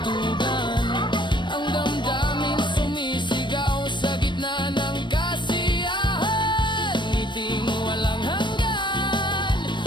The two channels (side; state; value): right; late; 0.22 ms